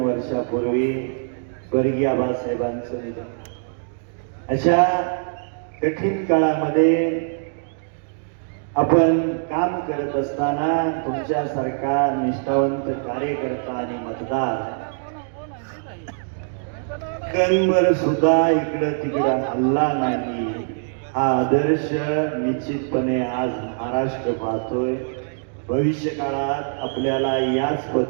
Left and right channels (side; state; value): left; silent; digital silence